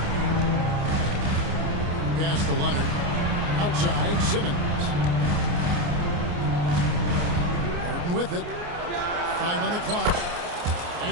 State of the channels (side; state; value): left; late; 29 ms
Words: Pass to Leonard. Outside, Simmons. Harden with it. 5 on the clock.